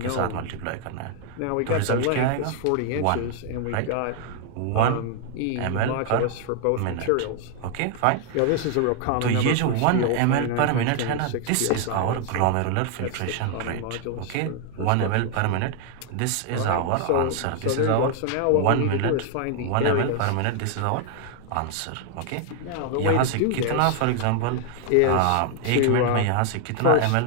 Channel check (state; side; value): different; both; correlation 0.00